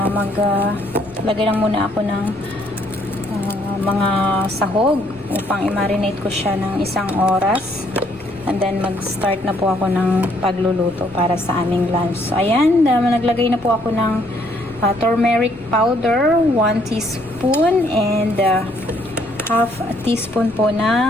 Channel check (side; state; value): left; noise; rumble, 25 dB below the sound